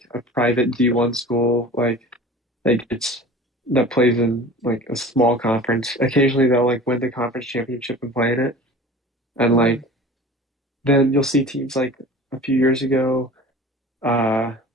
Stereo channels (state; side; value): normal; both; correlation 0.40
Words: a private D1 school, like it's that plays in like a small conference. Occasionally they'll like win the conference championship and play in it. And Mm-hmm. like then you'll see teams like a few years ago, uh